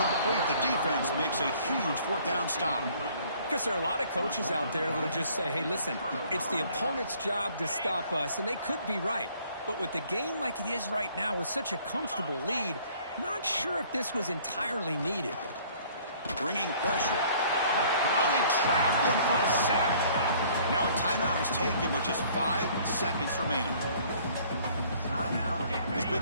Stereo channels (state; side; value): inverted; both; correlation -0.57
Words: The defense makes a huge 4th down stop. Because there are a lot of coaches out there that'll just say, hey, listen, it's the opponent's job to stop us, and they could be right. But with the game like it is right now with such a comfortable lead, not sure if this was entirely needed. Bringing pressure. Well, they trapped him for a sack. Now a timeout is taken with just 5 seconds remaining. This big